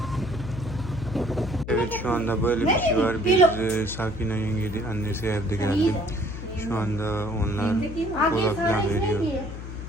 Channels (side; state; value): left; noise; hum, 9 dB below the sound